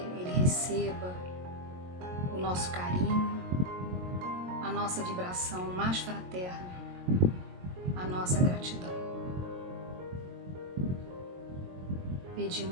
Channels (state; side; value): late; left; 22 ms